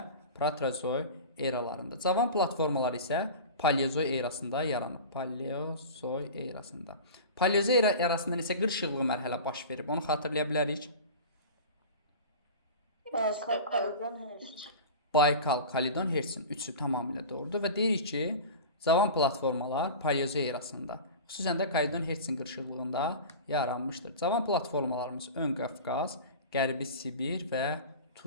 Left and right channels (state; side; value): inverted; both; correlation -0.33